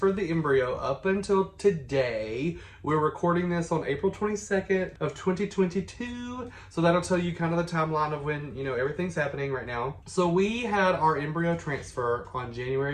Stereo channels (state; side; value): identical; both; correlation 1.00